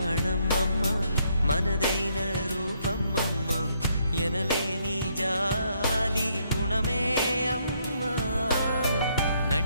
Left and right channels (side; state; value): both; inverted; correlation -0.72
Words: అమ్మ, మనదైన రూపం అమ్మ, ఎనలేని జాలి గుణమే అమ్మ.